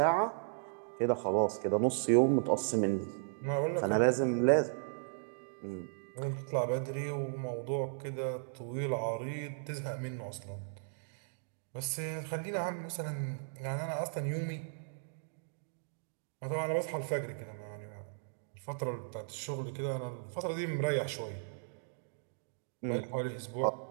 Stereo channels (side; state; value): left; silent; digital silence